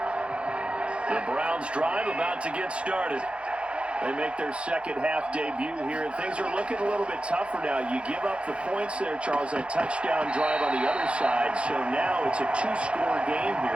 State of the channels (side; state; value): left; late; 0.059 ms